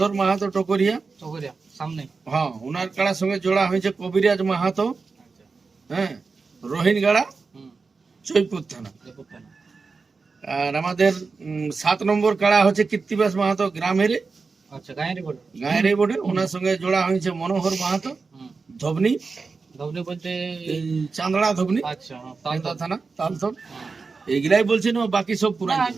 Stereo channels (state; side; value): quieter; left; 4.5 dB